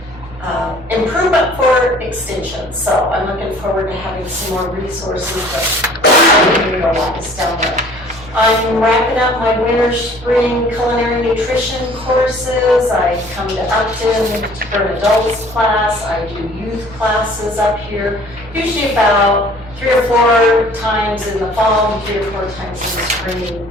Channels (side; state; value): both; normal; correlation 0.52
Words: improvement for extension. So I'm looking forward to having some more resources, but I don't know what is down there. I'm wrapping up my winter, spring culinary nutrition courses. I come to Upton for an adults class. I do youth classes up here, usually about 3 or 4 times in the fall and 3 or 4 times in the spring